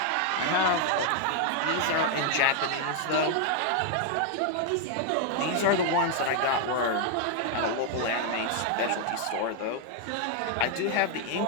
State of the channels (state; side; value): different; both; correlation 0.00